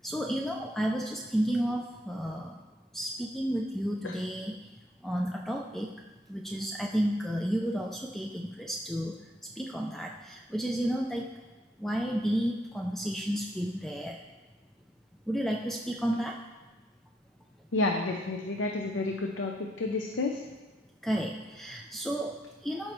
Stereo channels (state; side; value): normal; both; correlation 0.75